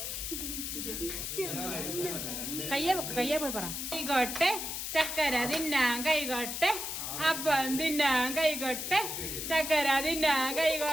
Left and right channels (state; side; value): noise; left; hiss, 4 dB below the sound